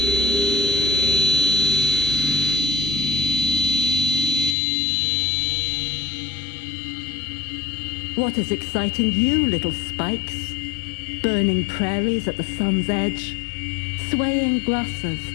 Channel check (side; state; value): right; drops out; at 4.5 s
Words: What is exciting you, little spikes? Burning prairies at the sun's edge, swaying grasses,